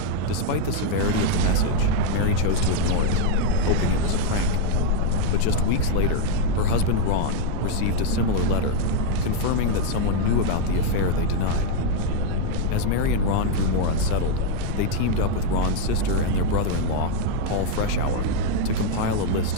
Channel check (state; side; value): different; both; correlation 0.00